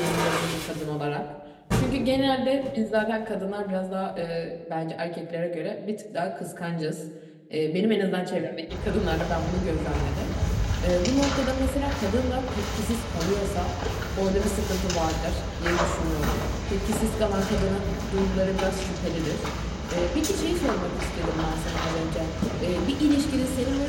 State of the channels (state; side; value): identical; both; correlation 1.00